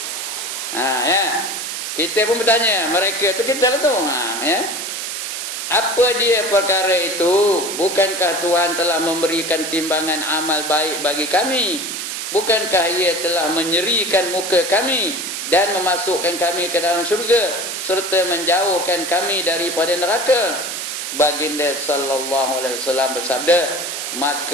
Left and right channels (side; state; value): right; noise; hiss, 5 dB below the sound